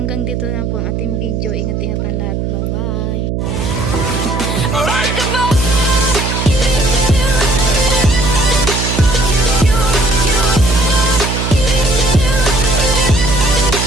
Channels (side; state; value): right; noise; hum, 2 dB below the sound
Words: dito na po ang ating video. Ingat-ingat ang lahat. Bye-bye!